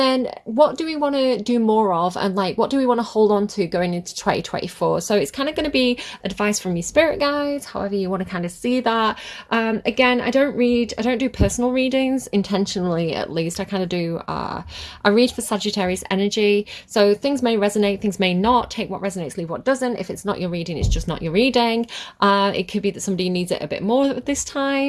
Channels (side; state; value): both; identical; correlation 1.00